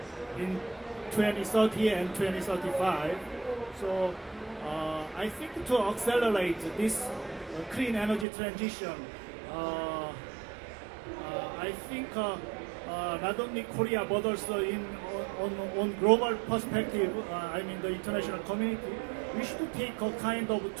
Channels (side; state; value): left; drops out; at 8.2 s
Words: 2030 and 2035. So I think to accelerate this clean energy transition, I think not only Korea but also on global perspective, I mean the international community, we should take a kind of